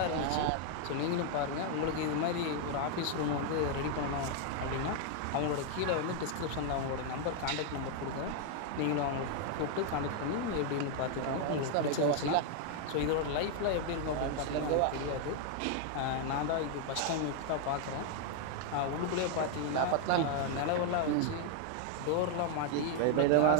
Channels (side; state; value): both; different; correlation 0.00